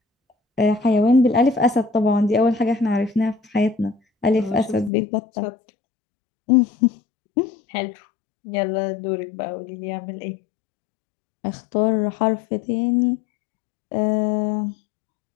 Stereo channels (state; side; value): drops out; right; at 4.9 s